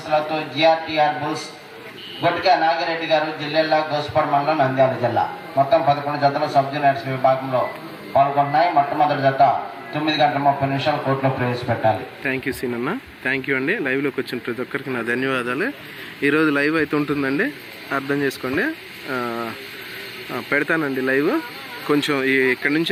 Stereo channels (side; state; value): both; identical; correlation 1.00